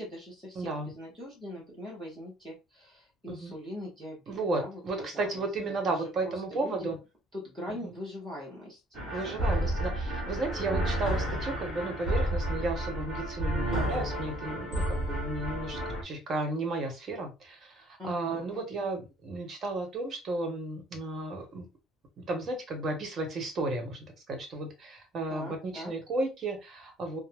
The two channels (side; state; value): both; normal; correlation 0.60